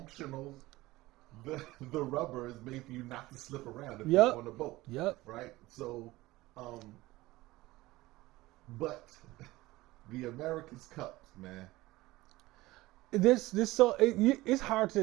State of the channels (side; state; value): left; quieter; 18.8 dB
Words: The rubber is made for you not to slip around if you're on a boat. Yep. Right? So, but the America's Cup, man. It's hard